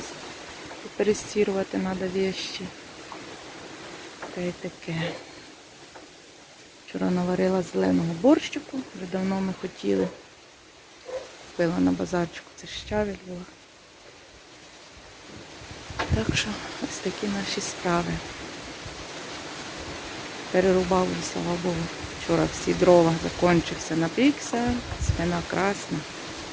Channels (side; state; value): both; identical; correlation 1.00